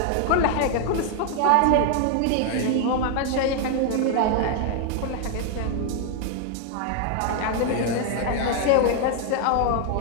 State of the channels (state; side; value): different; both; correlation 0.00